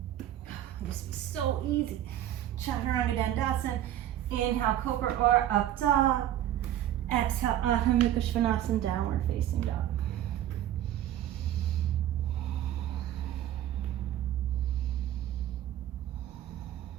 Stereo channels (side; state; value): left; quieter; 12.1 dB